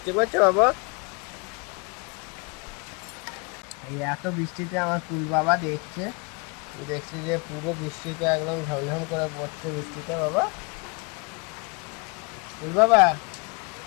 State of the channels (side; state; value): right; quieter; 31.8 dB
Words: পড়ছে বাবা? এই এত বৃষ্টিতে আমার কুল বাবা দেখছে, দেখছি যে পুরো বৃষ্টিতে একদম ঝমঝম করে পড়ছে বৃষ্টিতে বাবা। কুল বাবা